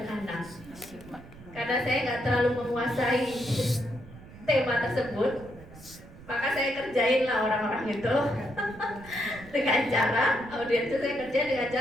anak. Karena saya nggak terlalu menguasai tema tersebut, maka saya kerjain lah orang-orang itu dengan cara audiens itu saya kerjain dengan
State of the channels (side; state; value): right; noise; rumble, 19 dB below the sound